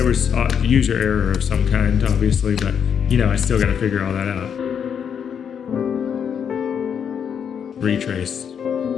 was user error of some kind, obviously, but you know, I still got to figure all that out. Retrace.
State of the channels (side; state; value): right; quieter; 7.7 dB